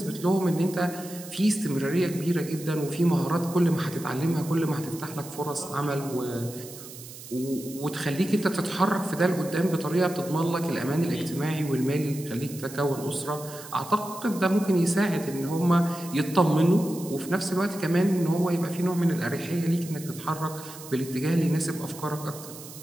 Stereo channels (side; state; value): right; noise; hiss, 15 dB below the sound